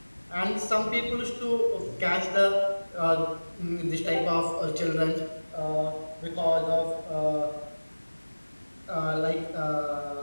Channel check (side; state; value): both; inverted; correlation -1.00